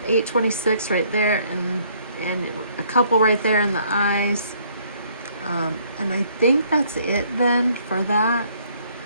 826 right there, and a couple right there in the eyes, and I think that's it then for that.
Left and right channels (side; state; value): both; inverted; correlation -0.64